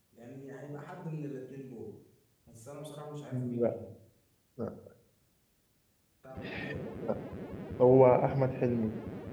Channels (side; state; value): both; identical; correlation 1.00